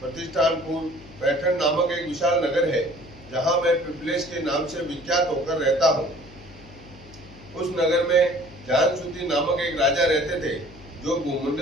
प्रतिष्ठानपुर पैठण नामक एक विशाल नगर है, जहाँ मैं पिपलेश के नाम से विख्यात होकर रहता हूँ। उस नगर में जानसूति नामक एक राजा रहते थे, जो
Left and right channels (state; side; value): noise; left; hum, 21 dB below the sound